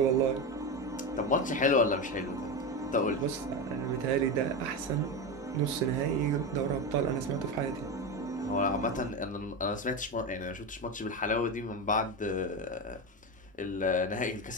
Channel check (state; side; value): normal; both; correlation 0.17